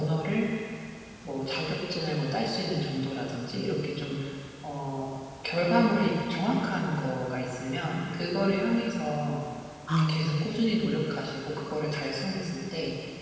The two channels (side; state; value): both; identical; correlation 1.00